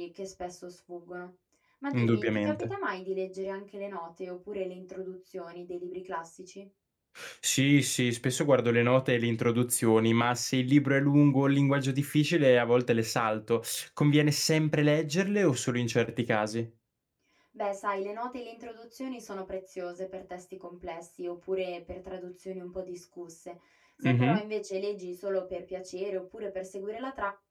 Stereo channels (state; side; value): identical; both; correlation 1.00